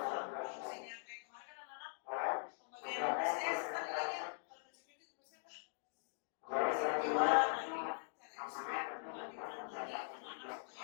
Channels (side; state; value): right; silent; digital silence